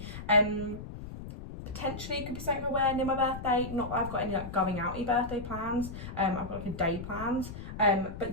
Potentially it could be something I wear near my birthday. Not that I've got any like going outy birthday plans. I've got like a day plans.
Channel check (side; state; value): left; noise; rumble, 10 dB below the sound